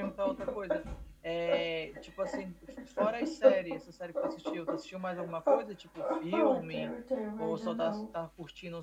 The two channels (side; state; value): both; identical; correlation 1.00